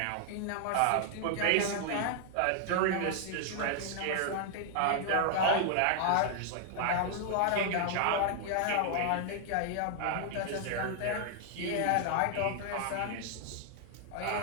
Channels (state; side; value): different; both; correlation 0.00